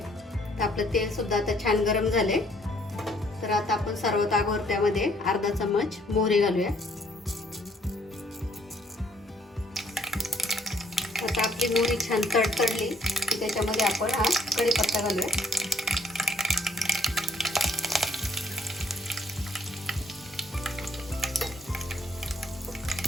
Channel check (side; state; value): both; normal; correlation 0.63